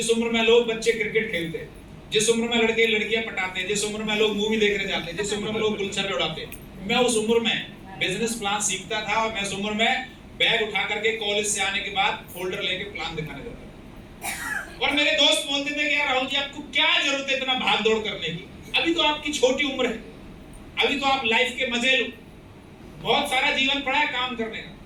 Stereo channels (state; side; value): identical; both; correlation 1.00